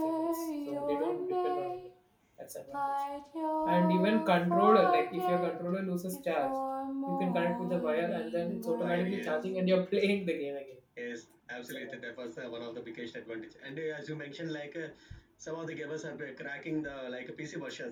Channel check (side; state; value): both; identical; correlation 1.00